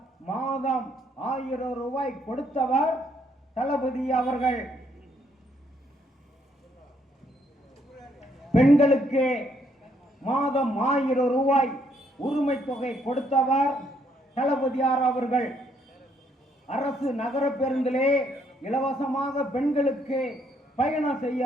மாதம் 1000 ரூபாய் கொடுத்தவர் தளபதி அவர்கள். பெண்களுக்கு மாதம் 1000 ரூபாய் உரிமை தொகை கொடுத்தவர் தளபதியார் அவர்கள். அரசு நகர பேருந்திலே இலவசமாக பெண்களுக்கு பயணம்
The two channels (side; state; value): both; normal; correlation 0.70